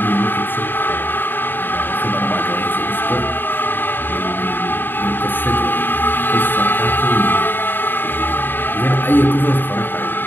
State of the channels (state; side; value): late; right; 0.094 ms